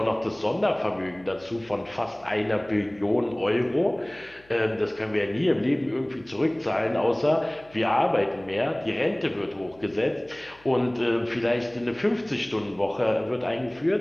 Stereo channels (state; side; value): noise; left; hum, 28 dB below the sound